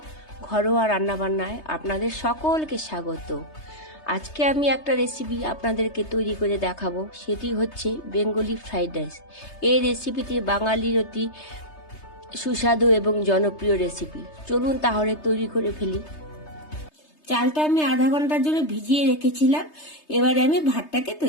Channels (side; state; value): right; late; 3.3 ms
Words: ঘরোয়া রান্নাবান্নায় আপনাদের সকলকে স্বাগত। আজকে আমি একটা রেসিপি আপনাদেরকে তৈরি করে দেখাবো, সেটি হচ্ছে বেঙ্গলি ফ্রাইড রাইস। এই রেসিপিটি বাঙালির অতি সুস্বাদু এবং জনপ্রিয় রেসিপি। চলুন তাহলে তৈরি করে ফেলি। চালটা আমি আধা ঘন্টার জন্য ভিজিয়ে রেখেছিলাম। এবারে আমি ভাতটাকে